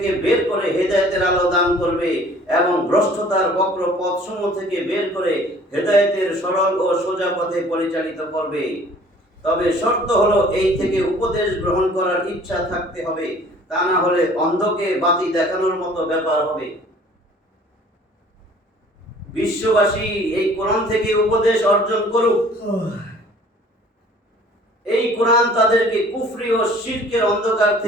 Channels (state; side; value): normal; both; correlation 0.52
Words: বের করে হেদায়েতের আলো দান করবে এবং ভ্রষ্টতার বক্র পথসমূহ থেকে বের করে হেদায়েতের সরল ও সোজা পথে পরিচালিত করবে। তবে শর্ত হলো এই থেকে উপদেশ গ্রহণ করার ইচ্ছা থাকতে হবে, তা না হলে অন্ধকে বাতি দেখানোর মতো ব্যাপার হবে। বিশ্ববাসী এই কোরআন থেকে উপদেশ অর্জন করুক, এই কোরআন তাদেরকে কুফরি ও শিরকের অন্ধকার